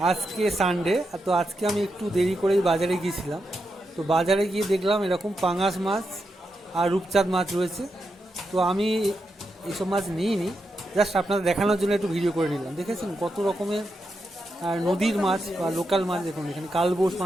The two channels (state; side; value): normal; both; correlation 0.85